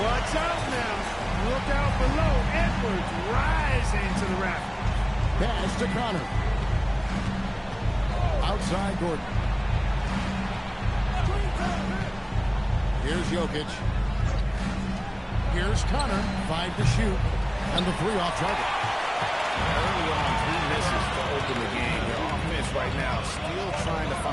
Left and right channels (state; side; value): identical; both; correlation 1.00